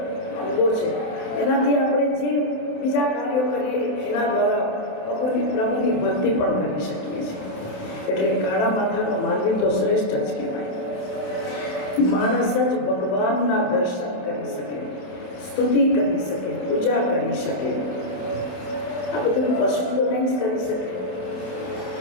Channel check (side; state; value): right; late; 28 ms